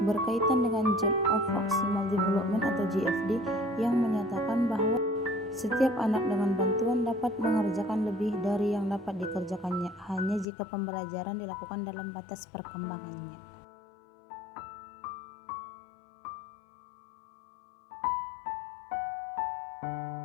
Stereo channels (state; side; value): drops out; right; at 10.5 s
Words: dengan Zone of Proximal Development atau GFD yang menyatakan bahwa setiap anak dengan bantuan dapat mengerjakan lebih dari yang dapat dikerjakannya hanya jika pembelajaran dilakukan dalam batas perkembangannya.